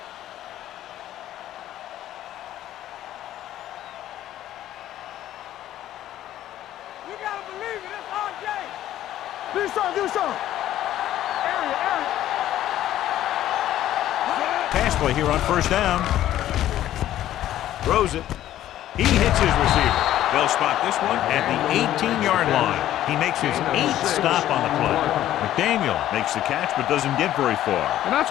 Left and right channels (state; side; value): quieter; right; 12.8 dB